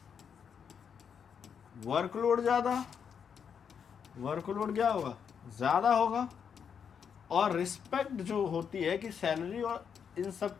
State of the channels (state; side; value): quieter; right; 7.2 dB